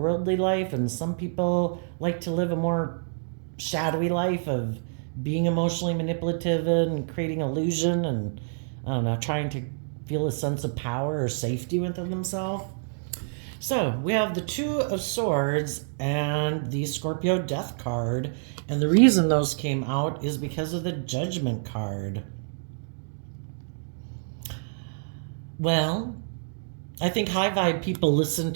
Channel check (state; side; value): silent; left; digital silence